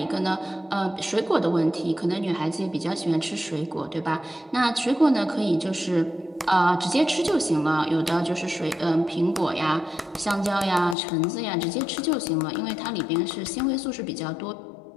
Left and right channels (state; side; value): drops out; right; at 11.0 s